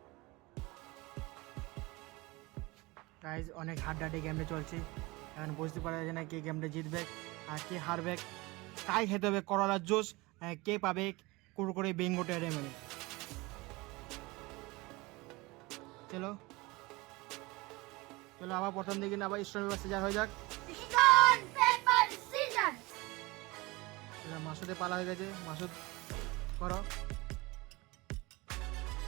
গাইজ অনেক হাড্ডাহাড্ডি গেমটা চলছে, এখন বুঝতে পারা যায় না কে গেমটা জিতবে আর কে হারবে। কাই খেতে হবে করলার জুস, কে পাবে কুরকুরে বিঙ্গো টেড়ে মেরে। চলো চলো আবার প্রথম দিকে আবার স্টোন পেপার সিজার হয়ে যাক। Stone paper scissor. মাসুদের পালা হয়ে গেছে, মাসুদ করো।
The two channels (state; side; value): quieter; left; 23.0 dB